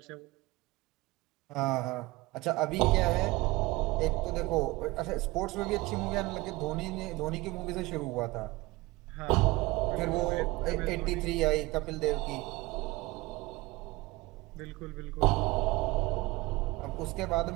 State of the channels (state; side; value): quieter; left; 21.3 dB